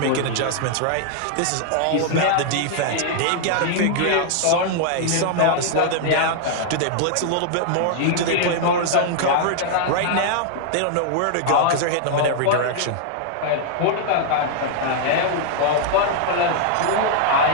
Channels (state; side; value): different; both; correlation -0.01